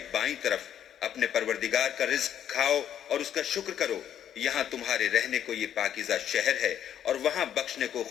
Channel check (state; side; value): quieter; right; 9.9 dB